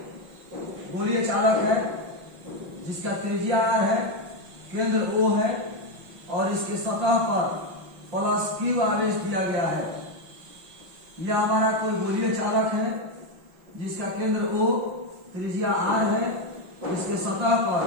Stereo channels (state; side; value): late; left; 5.6 ms